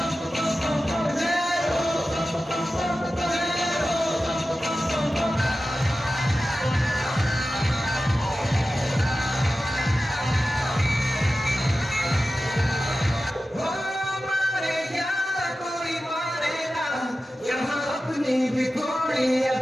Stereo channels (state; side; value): normal; both; correlation 0.94